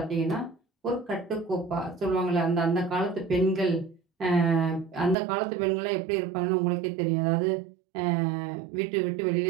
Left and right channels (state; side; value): drops out; left; at 5.2 s